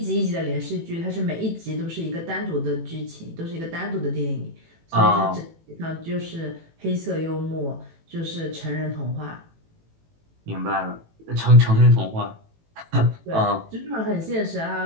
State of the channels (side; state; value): left; late; 18 ms